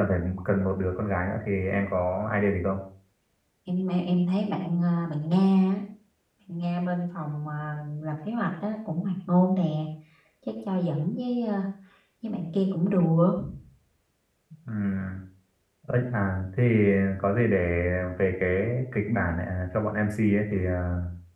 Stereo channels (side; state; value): both; identical; correlation 1.00